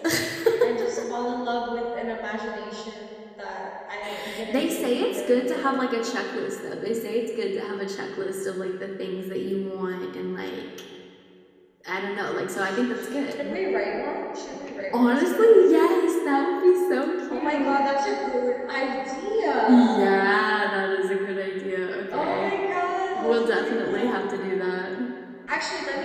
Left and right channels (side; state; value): both; identical; correlation 1.00